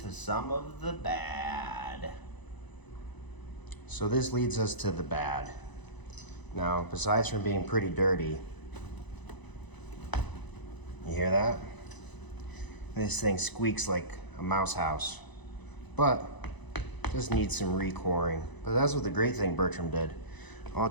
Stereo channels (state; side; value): late; right; 1.0 ms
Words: to some of the bad. So this leads us to the bad. Now, besides from being pretty dirty, You hear that? This thing squeaks like a mouse house, but just needs some recoring. But that's what the great thing Bertram did. All